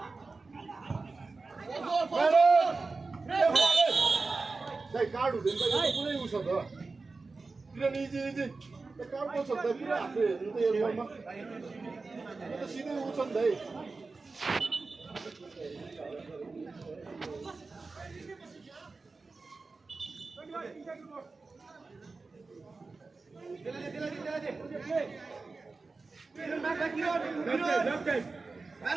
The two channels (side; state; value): left; quieter; 3.9 dB